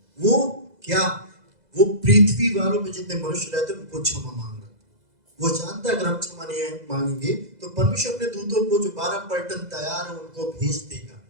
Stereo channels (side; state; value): left; late; 2.0 ms